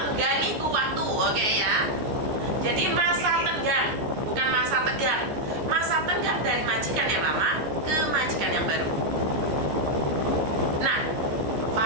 itu waktu, oke ya. Jadi masa tenggang, bukan masa tegang. Masa tenggang dari majikan yang lama ke majikan yang baru. Nah,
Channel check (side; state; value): left; late; 14 ms